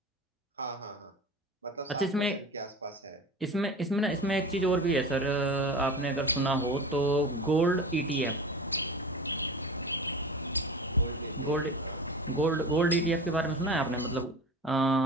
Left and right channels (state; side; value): normal; both; correlation 0.32